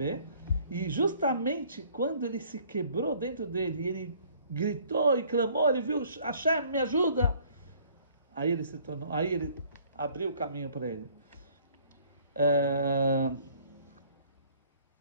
e justamente quando ele se quebrou dentro dele, ele gritou e clamou, ele viu, Hashem, me ajuda! Aí ele abriu o caminho para ele.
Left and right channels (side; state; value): both; inverted; correlation -0.58